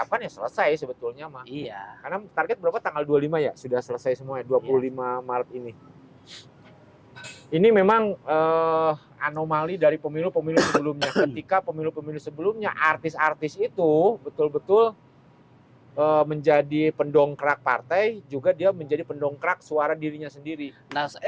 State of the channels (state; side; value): identical; both; correlation 1.00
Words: ya selesai sebetulnya mah. Iya. Karena target berapa, tanggal 25 ya sudah selesai semuanya, 25 Maret ini. Ini memang anomali dari pemilu-pemilu sebelumnya. Ketika pemilu-pemilu sebelumnya artis-artis itu betul-betul menjadi pendongkrak partai, juga dia menjadi pendongkrak suara dirinya sendiri. Nah,